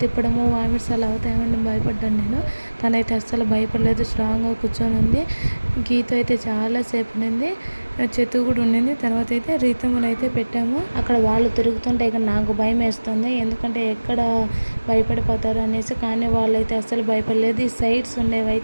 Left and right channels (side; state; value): both; inverted; correlation -1.00